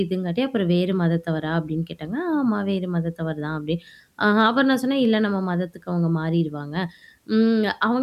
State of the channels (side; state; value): both; identical; correlation 1.00